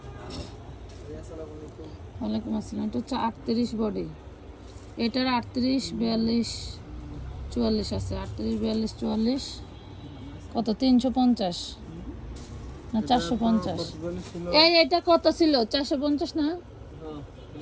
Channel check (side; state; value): both; identical; correlation 1.00